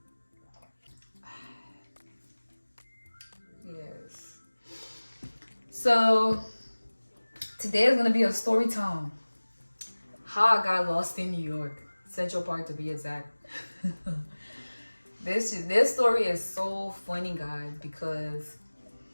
Yes. So today is gonna be a story time. How I got lost in New York, Central Park to be exact. This story is so funny, guys, because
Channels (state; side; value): inverted; both; correlation -1.00